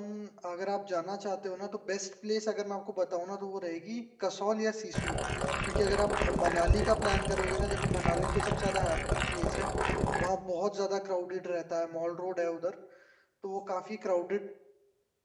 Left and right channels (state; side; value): identical; both; correlation 1.00